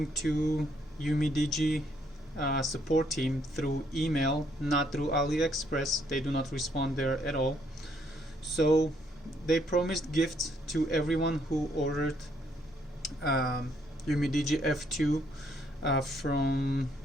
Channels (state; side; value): normal; both; correlation 0.70